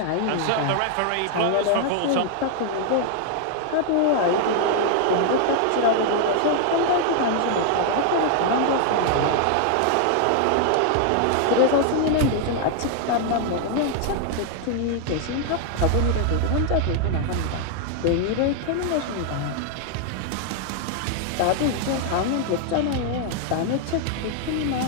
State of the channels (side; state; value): both; different; correlation 0.00